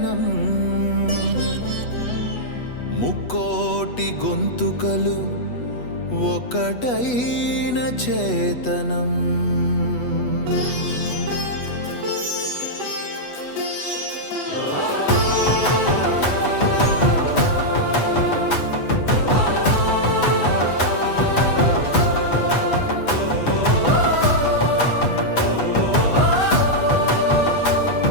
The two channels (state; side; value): late; right; 8.2 ms